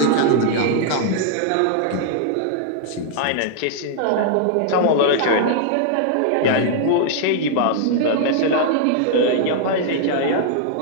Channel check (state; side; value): different; both; correlation 0.00